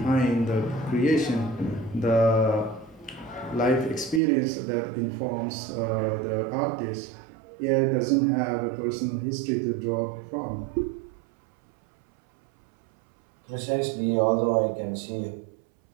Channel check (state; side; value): drops out; left; at 4.2 s